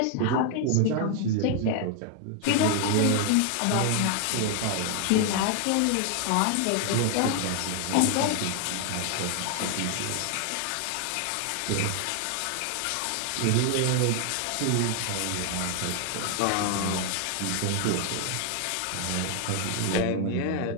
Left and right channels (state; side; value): different; both; correlation 0.00